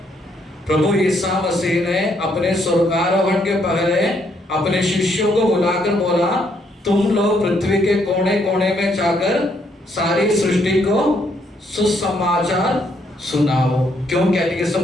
प्रभु ईसा मसीह ने अपने स्वर्गारोहण के पहले अपने शिष्यों को बुलाकर बोला, तुम लोग पृथ्वी के कोने कोने में जाकर सारी सृष्टि को सुसमाचार सुनाओ। क्यों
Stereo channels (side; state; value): both; normal; correlation 0.72